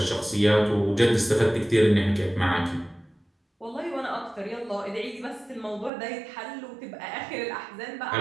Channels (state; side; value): drops out; left; at 5.9 s